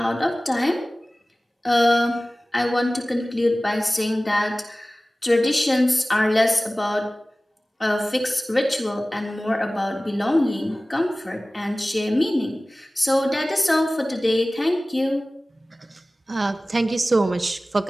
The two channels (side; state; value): both; normal; correlation 0.97